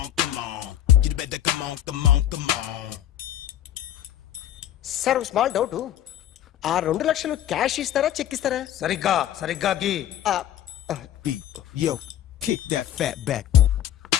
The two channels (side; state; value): right; quieter; 11.7 dB